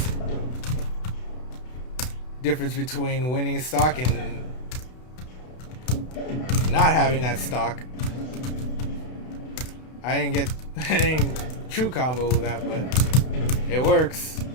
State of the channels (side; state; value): right; late; 32 ms